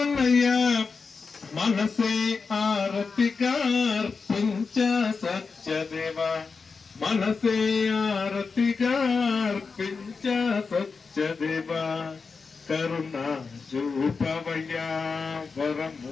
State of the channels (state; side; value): quieter; right; 4.8 dB